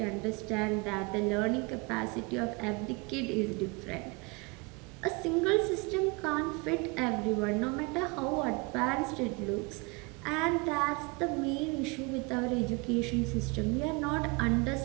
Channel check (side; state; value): left; quieter; 28.4 dB